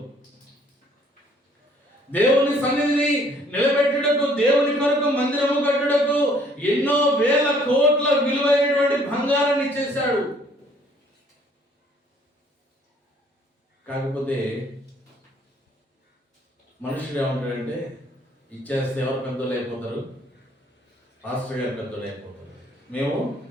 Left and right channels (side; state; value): both; normal; correlation 0.61